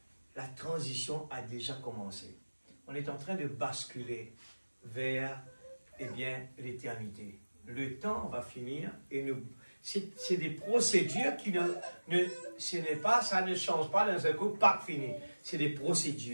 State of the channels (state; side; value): inverted; both; correlation -1.00